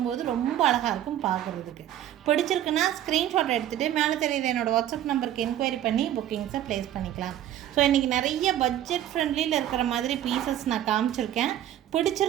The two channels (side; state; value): left; quieter; 11.8 dB